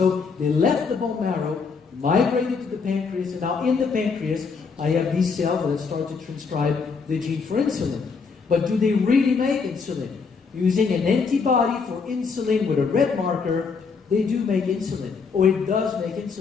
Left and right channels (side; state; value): right; quieter; 5.2 dB